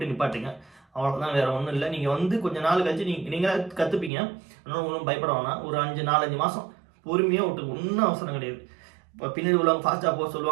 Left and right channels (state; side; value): drops out; left; at 4.1 s